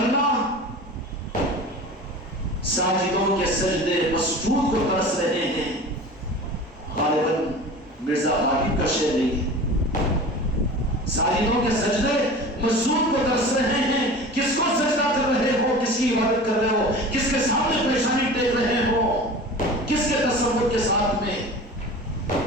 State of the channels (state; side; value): normal; both; correlation 0.37